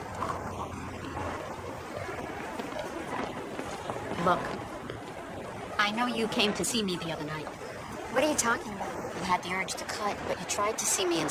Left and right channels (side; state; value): both; identical; correlation 1.00